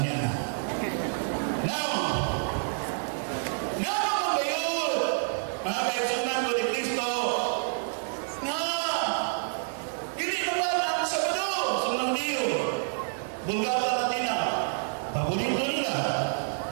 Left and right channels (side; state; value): left; silent; digital silence